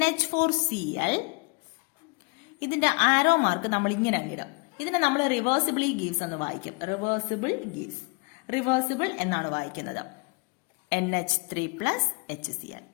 ഇതിന്റെ ആരോ മാർക്ക് നമ്മൾ ഇങ്ങനെ അങ്ങിടും. ഇതിനെ നമ്മൾ റിവേഴ്സിബിളി ഗീവ്സ് എന്ന് വായിക്കും. റിവേഴ്സിബിൾ എന്നാണ് വായിക്കുന്നത്. NH3+HCl.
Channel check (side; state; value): right; quieter; 31.1 dB